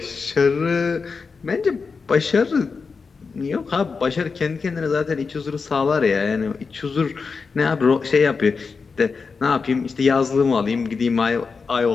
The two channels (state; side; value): quieter; right; 4.9 dB